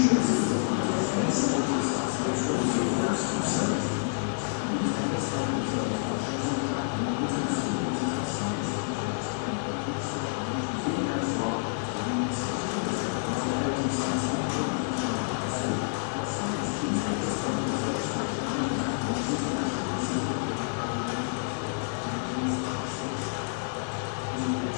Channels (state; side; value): silent; right; digital silence